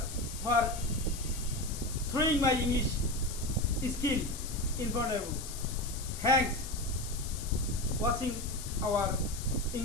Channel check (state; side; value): noise; left; hiss, 10 dB below the sound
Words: for throwing my English skill in front of you. Thanks watching our